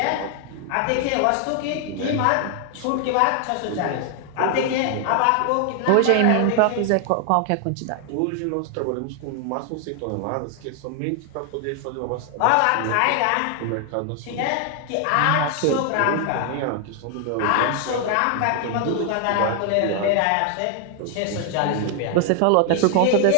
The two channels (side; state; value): both; different; correlation 0.00